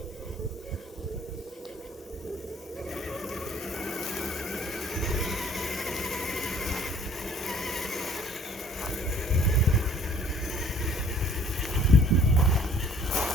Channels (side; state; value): both; normal; correlation 0.55